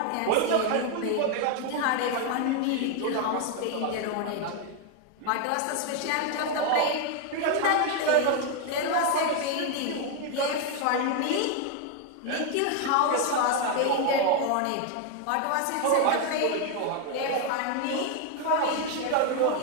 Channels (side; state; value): both; different; correlation 0.01